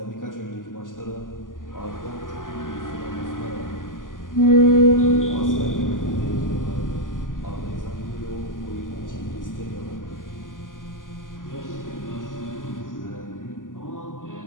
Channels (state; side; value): late; right; 0.88 ms